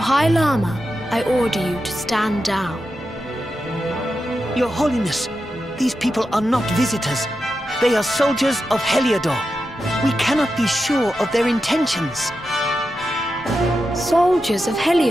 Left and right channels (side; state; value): both; normal; correlation 0.89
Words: Lama, I order you to stand down. Your Holiness, these people are not visitors. They are soldiers of Heliodor. We cannot be sure of their intentions. Soldiers of